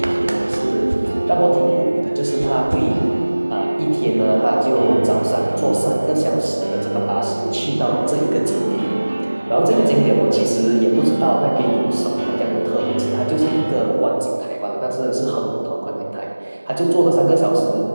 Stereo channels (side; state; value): both; inverted; correlation -1.00